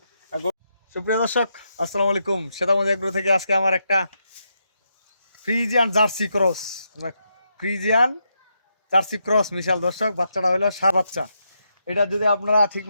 সুপ্রিয় দর্শক আসসালামু আলাইকুম, সেতামজ এগ্রো থেকে আজকে আমার একটা Friesian jersey cross, Friesian jersey cross মিশাল। দর্শক বাচ্চাটা হলো সার বাচ্চা। এটা যদি আপনারা ঠিক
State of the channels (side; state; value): both; inverted; correlation -0.82